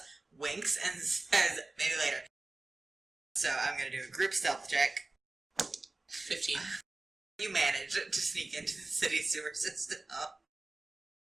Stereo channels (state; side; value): quieter; left; 3.1 dB